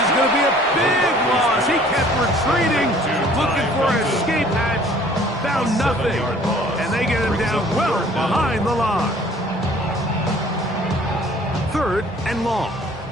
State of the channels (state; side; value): normal; both; correlation 0.54